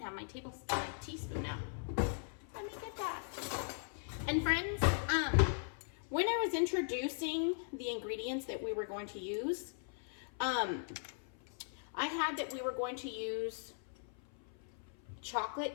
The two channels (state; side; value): silent; right; 52 dB below the other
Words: have my teaspoon out. Let me get that. And friends, when I was introducing the ingredients that we were going to use, I had that we were going to use